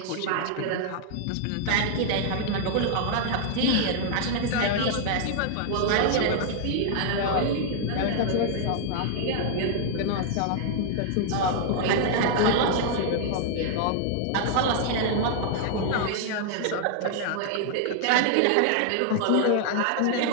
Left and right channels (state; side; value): different; both; correlation -0.01